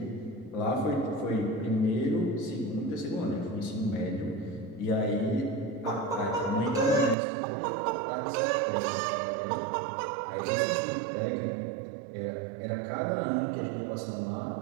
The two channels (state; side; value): drops out; left; at 7.2 s